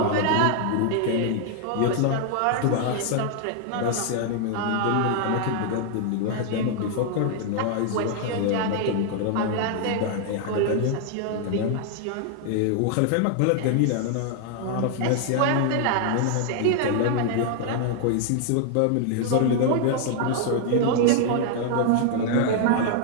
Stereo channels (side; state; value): both; different; correlation 0.00